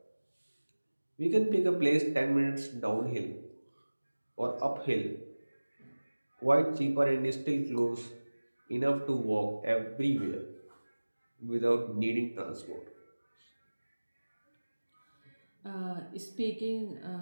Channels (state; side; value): inverted; both; correlation -1.00